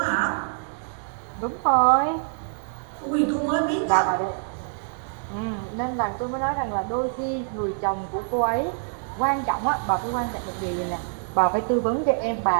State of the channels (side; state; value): left; silent; 61 dB below the other